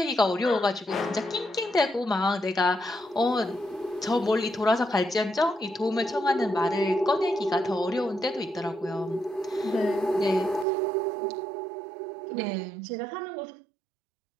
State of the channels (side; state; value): left; drops out; at 10.7 s